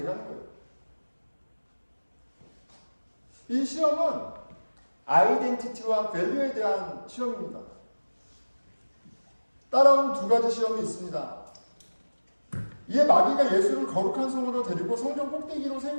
거예요. 이 시험은 아이덴티티와 밸류에 대한 시험입니다. 따라온 두 가지 시험이 있습니다. 이에 마귀가 예수를 거룩한 성으로 데리고 성전 꼭대기로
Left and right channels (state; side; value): inverted; both; correlation -1.00